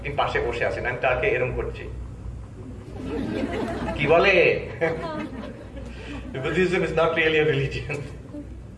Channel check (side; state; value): both; identical; correlation 1.00